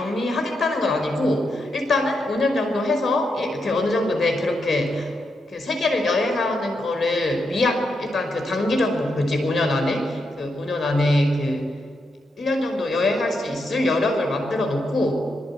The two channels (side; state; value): both; normal; correlation 0.83